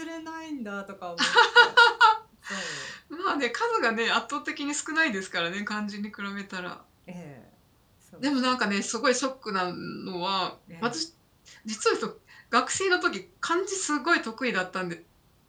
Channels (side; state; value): both; identical; correlation 1.00